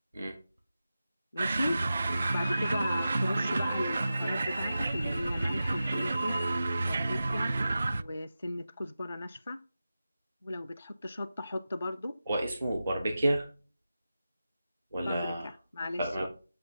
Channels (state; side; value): inverted; both; correlation -0.93